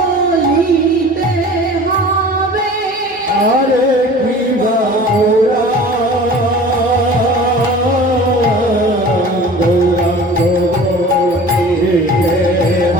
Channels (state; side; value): normal; both; correlation 0.42